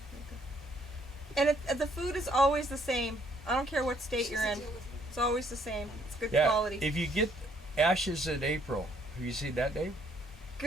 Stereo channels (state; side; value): normal; both; correlation 0.66